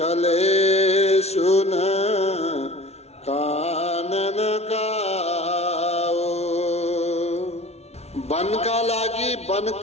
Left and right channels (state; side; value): late; right; 0.31 ms